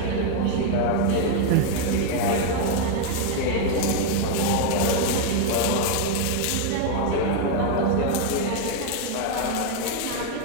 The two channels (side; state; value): both; different; correlation 0.01